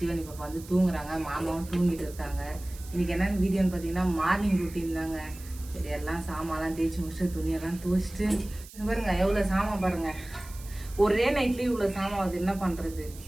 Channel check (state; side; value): noise; right; hiss, 18 dB below the sound